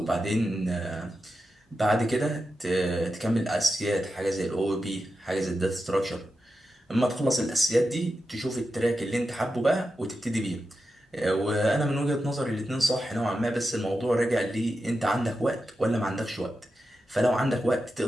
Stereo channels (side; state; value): both; normal; correlation 0.90